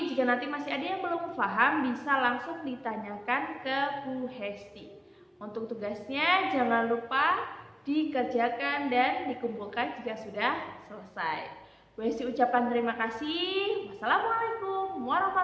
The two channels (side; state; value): both; identical; correlation 1.00